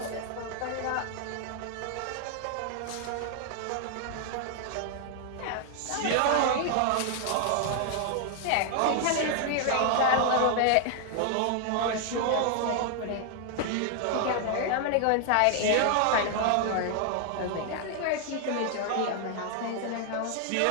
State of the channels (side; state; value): both; different; correlation 0.00